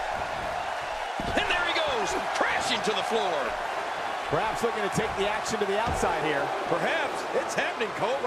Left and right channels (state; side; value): identical; both; correlation 1.00